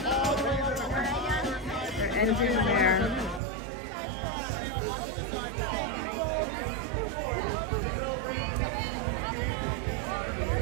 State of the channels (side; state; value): left; drops out; at 3.4 s